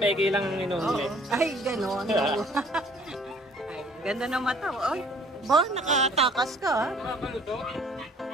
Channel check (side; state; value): both; normal; correlation 0.56